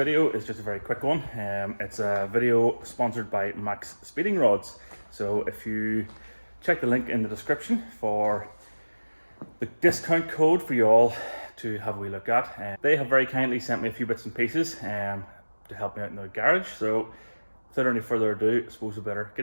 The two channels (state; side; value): inverted; both; correlation -1.00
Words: is just a very quick one. It's a video sponsored by Maxspeedingrods. So if you check the link in the description for the discount code for you all to have a wee look at, they have very kindly sent me a few bits and pieces to help me out in the garage. So without any further ado, I suppose we better